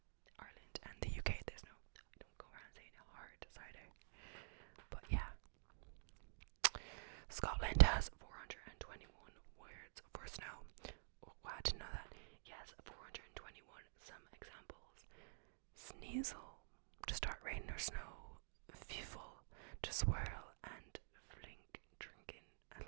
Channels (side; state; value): left; silent; digital silence